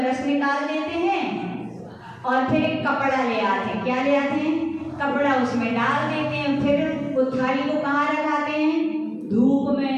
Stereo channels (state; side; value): identical; both; correlation 1.00